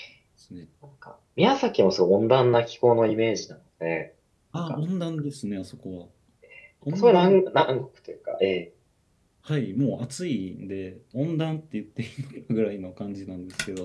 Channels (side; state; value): both; identical; correlation 1.00